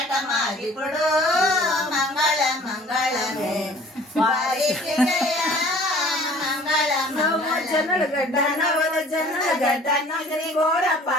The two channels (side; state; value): both; normal; correlation 0.50